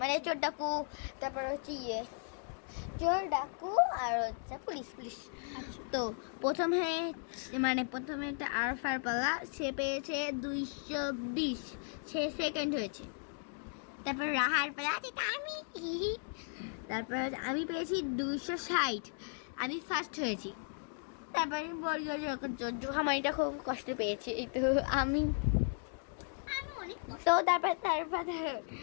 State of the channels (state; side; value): silent; right; 54 dB below the other